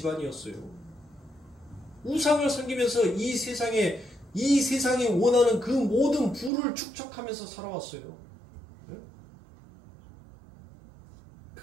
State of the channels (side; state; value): left; drops out; at 6.5 s